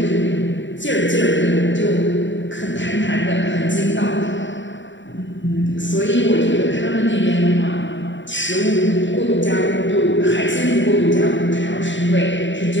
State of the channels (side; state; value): right; late; 0.54 ms